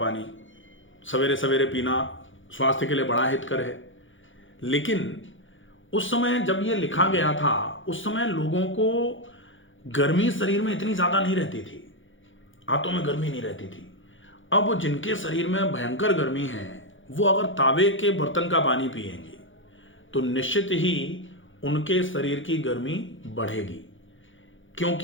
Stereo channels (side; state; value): right; late; 0.56 ms